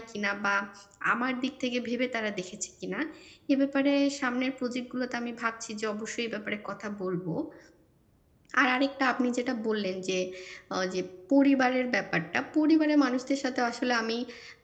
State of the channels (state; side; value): identical; both; correlation 1.00